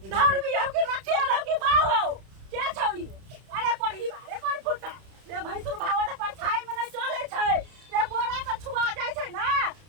धर भी हो के रखे रहो कि बाऊ हो क्या छौई अरे कढ़ी बा रे कोन फुटा रे भैंसुर भावा त परछाई में नहीं चले छै रे बोरा के छुआ जाय छै ना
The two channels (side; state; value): left; late; 31 ms